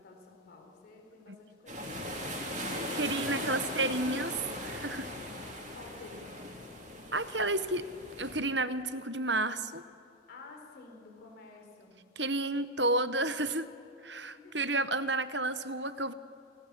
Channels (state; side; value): normal; both; correlation 0.06